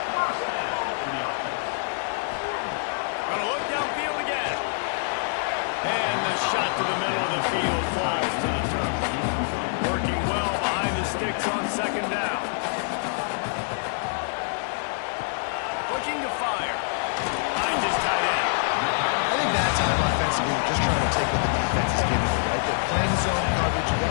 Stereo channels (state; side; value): silent; right; digital silence